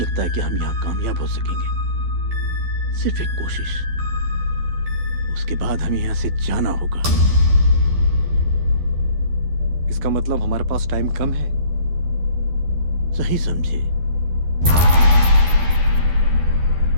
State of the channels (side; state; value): left; late; 12 ms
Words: है कि हम यहाँ कामयाब हो सकेंगे। सिर्फ एक कोशिश, उसके बाद हमें यहाँ से जाना होगा। इसका मतलब हमारे पास टाइम कम है। सही समझे।